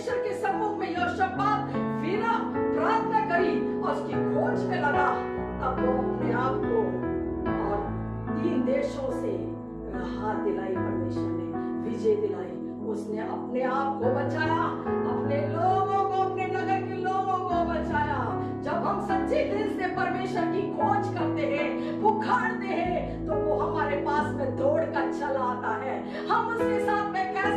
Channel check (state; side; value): identical; both; correlation 1.00